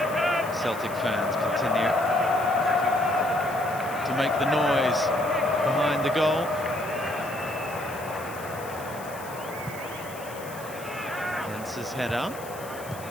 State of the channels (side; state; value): left; noise; hiss, 17 dB below the sound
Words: Celtic fans continue to make the noise behind the goal. His header.